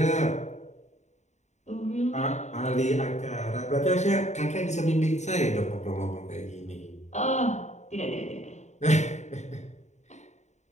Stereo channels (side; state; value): right; late; 0.34 ms